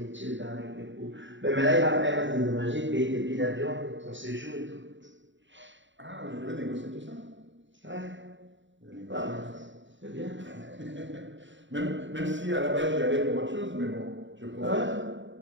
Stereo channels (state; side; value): late; left; 0.54 ms